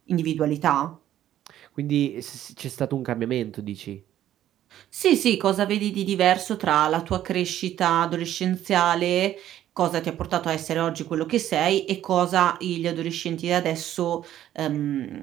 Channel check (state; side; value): quieter; left; 12.1 dB